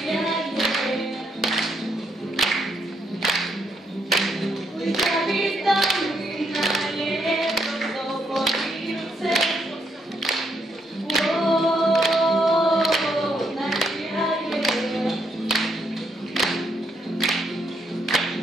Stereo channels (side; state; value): both; normal; correlation 0.75